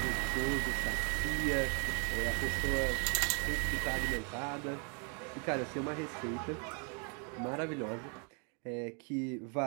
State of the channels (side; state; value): left; quieter; 38.1 dB